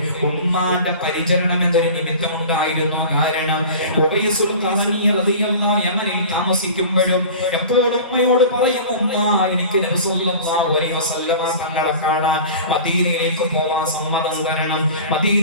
ഉമ്മാന്റെ പരിചരണം എന്നൊരു നിമിത്തമുണ്ടായിരുന്നു. കാരണം ഉവൈസുൽ ഖറനി റളിയല്ലാഹു യമനിൽ താമസിക്കുമ്പോഴും എപ്പോഴും ഉമ്മയോട് പറയും, ഉമ്മ എനിക്ക് നബി സല്ലല്ലാഹു അലൈഹി വസല്ലമ തങ്ങളെ കാണാൻ മദീനയിലേക്ക് പോവാൻ സമ്മതം തരണം,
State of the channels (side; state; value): both; inverted; correlation -0.38